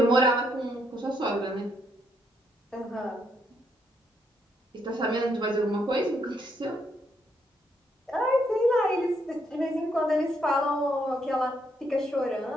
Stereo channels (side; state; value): both; normal; correlation 0.75